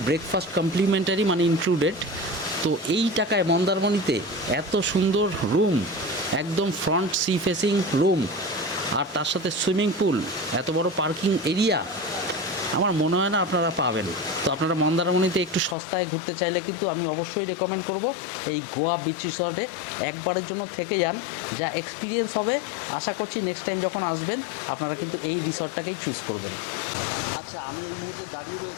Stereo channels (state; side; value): drops out; right; at 15.8 s